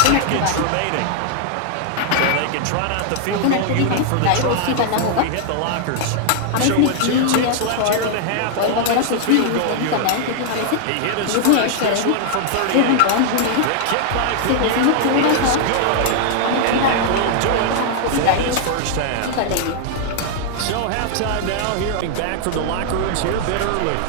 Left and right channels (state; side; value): different; both; correlation 0.00